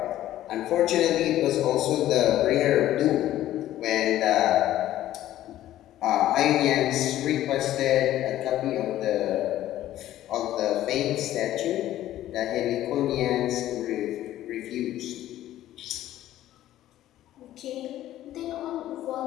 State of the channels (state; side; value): quieter; right; 13.5 dB